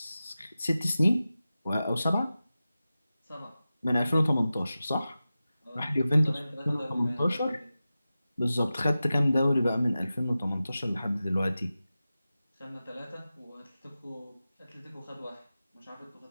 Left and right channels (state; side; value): inverted; both; correlation -0.94